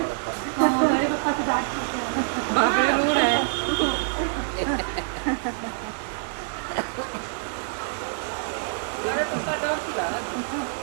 बाप रे रो रहा है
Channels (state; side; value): silent; left; digital silence